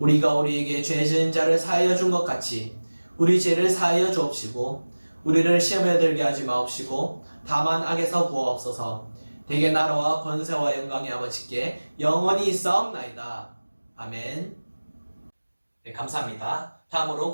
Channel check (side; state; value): both; inverted; correlation -1.00